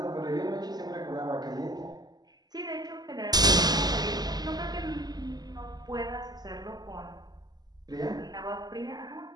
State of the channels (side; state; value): left; late; 0.20 ms